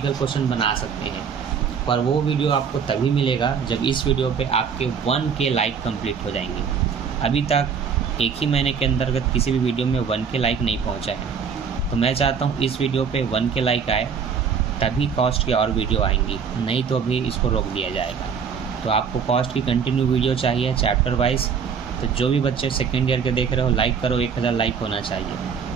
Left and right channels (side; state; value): left; quieter; 6.5 dB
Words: क्वेश्चन बना सकते हैं, पर वो वीडियो आपको तभी मिलेगा जब इस वीडियो पे आपके 1K लाइक कंप्लीट हो जाएंगे। अभी तक एक ही महीने के अंतर्गत किसी भी वीडियो में 1K लाइक नहीं पहुंचा है। तो मैं चाहता हूं इस वीडियो पे 1K लाइक आए, तभी कॉस्ट की और वीडियो आएंगी, नहीं तो अभी इसको रोक दिया जाएगा। तो आपको कॉस्ट की कंटिन्यू वीडियो चाहिए चैप्टर वाइज। तो जो भी बच्चे सेकेंड ईयर के देख रहे हो, लाइक करो, 1000 लाइक होना चाहिए।